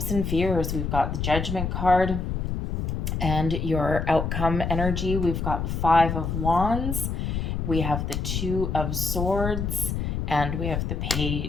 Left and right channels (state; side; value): noise; left; rumble, 2 dB below the sound